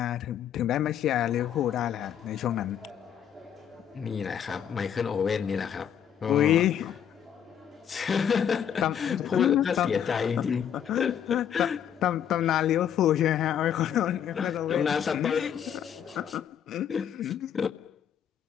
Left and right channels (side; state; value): right; quieter; 8.9 dB